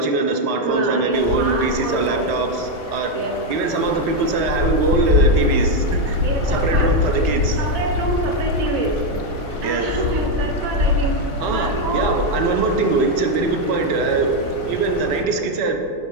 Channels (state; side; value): late; left; 4.0 ms